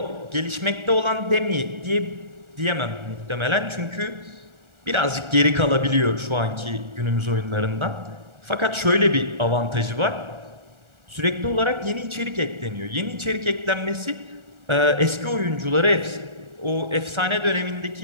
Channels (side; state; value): left; late; 1.4 ms